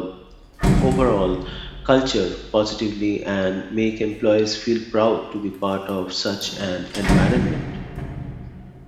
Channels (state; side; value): identical; both; correlation 1.00